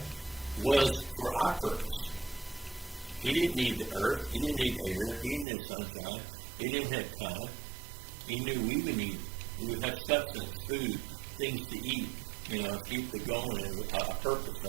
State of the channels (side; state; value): left; drops out; at 5.5 s